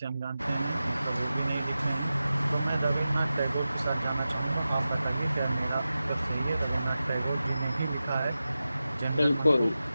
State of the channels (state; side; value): inverted; both; correlation -0.93